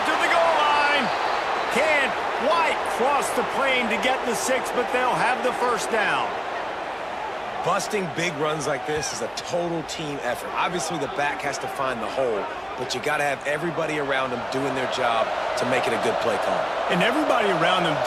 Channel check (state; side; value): identical; both; correlation 1.00